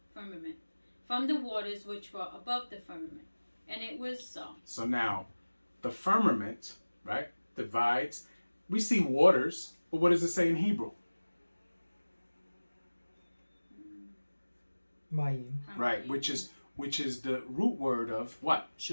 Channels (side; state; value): both; inverted; correlation -1.00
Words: from the waters which were above the firmament. And it was so. So now, the firmament, right, divides. We see waters, but what does it say in Hebrew? Mayim. Right, which is the root word of what?